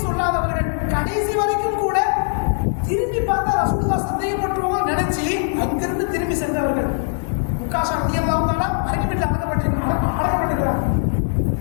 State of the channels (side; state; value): right; silent; 60 dB below the other